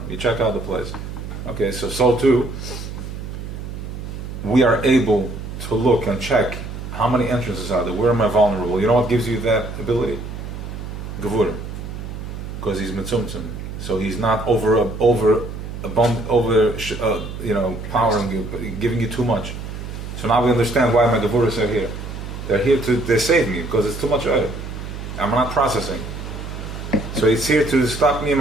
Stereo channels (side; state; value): right; noise; hum, 8 dB below the sound